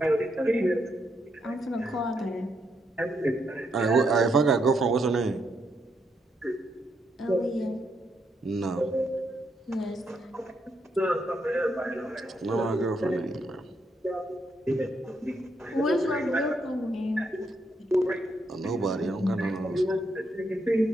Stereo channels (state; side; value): normal; both; correlation 0.78